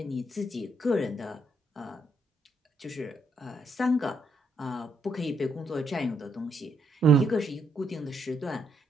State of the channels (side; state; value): both; normal; correlation 0.75